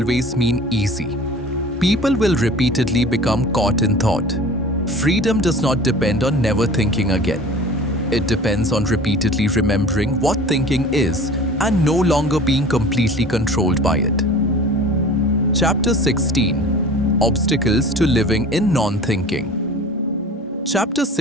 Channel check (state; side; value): normal; both; correlation 0.41